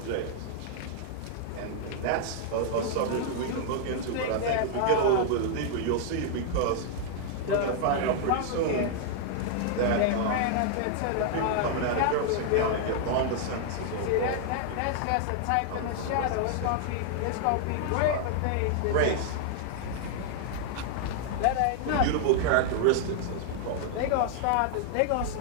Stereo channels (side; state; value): both; different; correlation -0.01